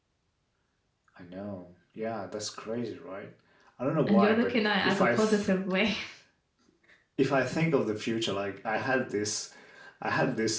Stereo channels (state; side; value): identical; both; correlation 1.00